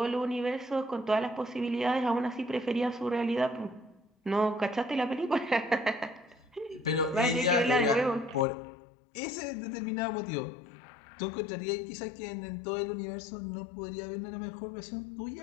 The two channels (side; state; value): right; drops out; at 8.5 s